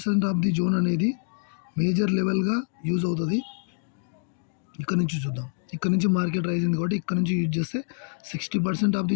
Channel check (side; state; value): right; silent; digital silence